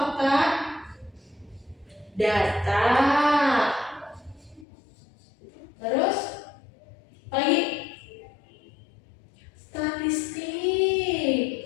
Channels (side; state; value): right; drops out; at 4.7 s